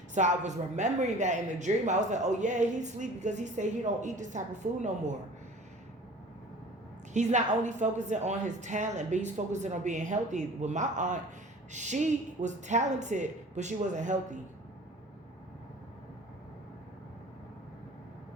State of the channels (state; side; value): normal; both; correlation 0.45